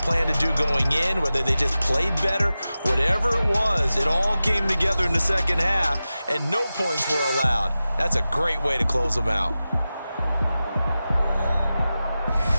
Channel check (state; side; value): inverted; both; correlation -0.94